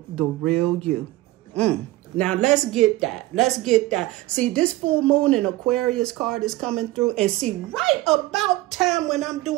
the real you. Now, let's get that. Let's get that. See, this full moon and Aquarius card is coming through. And see, right about time when I'm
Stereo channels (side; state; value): left; quieter; 17.8 dB